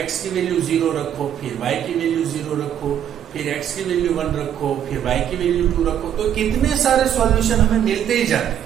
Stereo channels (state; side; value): quieter; left; 9.8 dB